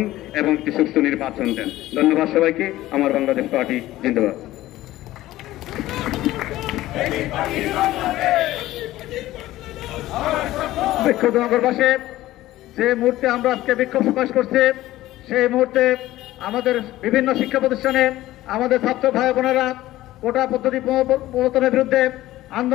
এবং একটি সুষ্ঠু নির্বাচন দেন। ধন্যবাদ সবাইকে। আমার বাংলাদেশ পার্টি জিন্দাবাদ। বিক্ষুব্ধ নগরবাসী, যে মুহূর্তে আমরা আজকে বিক্ষোভ প্রকাশ করছি, সেই মুহূর্তে আমাদের বিভিন্ন শিক্ষা প্রতিষ্ঠানে আমাদের ছাত্র ভাই বোনেরা কোটা পদ্ধতি প্রবর্তনের বিরুদ্ধে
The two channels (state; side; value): quieter; right; 15.8 dB